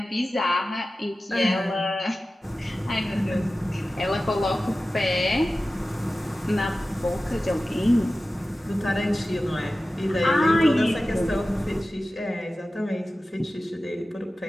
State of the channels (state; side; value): normal; both; correlation 0.95